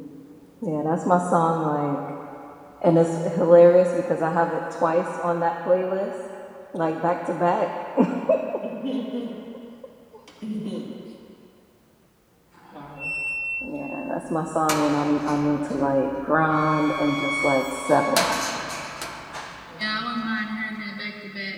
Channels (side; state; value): both; identical; correlation 1.00